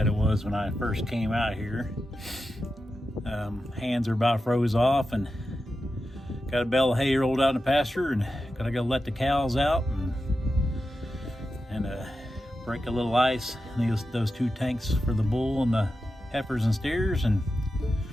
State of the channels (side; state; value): both; normal; correlation 0.90